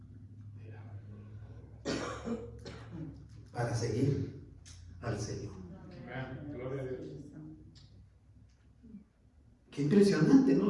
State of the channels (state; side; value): identical; both; correlation 1.00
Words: para seguir al Señor. Gloria a Dios. Qué impresionante,